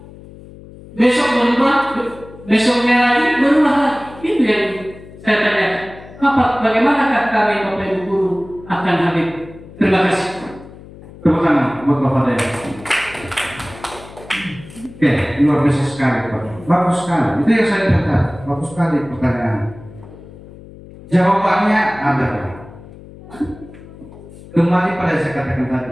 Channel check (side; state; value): left; noise; hum, 18 dB below the sound